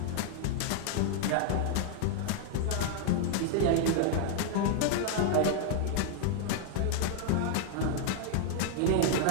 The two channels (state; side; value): different; both; correlation 0.00